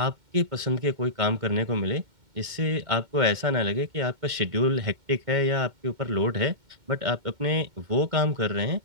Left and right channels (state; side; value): late; left; 2.1 ms